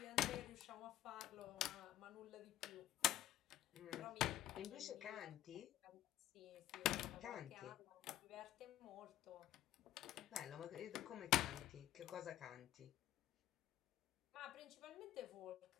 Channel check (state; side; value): quieter; right; 13.5 dB